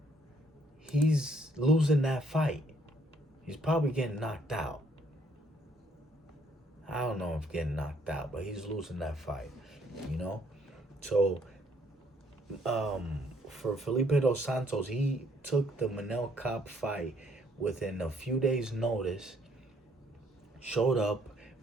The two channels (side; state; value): both; normal; correlation 0.66